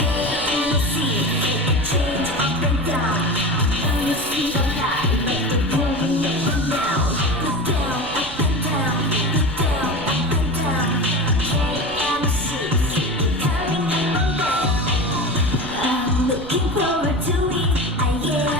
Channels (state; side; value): noise; right; rumble, 17 dB below the sound